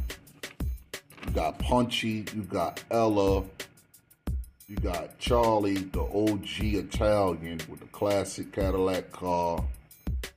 You got Punchy. You got Ella. You got Charlie, the OG Italian with the classic Cadillac car.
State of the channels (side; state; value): both; identical; correlation 1.00